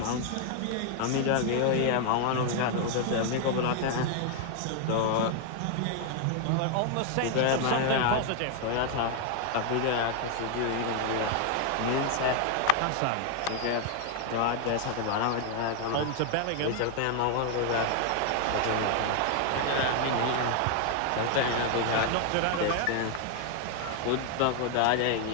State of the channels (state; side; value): different; both; correlation 0.00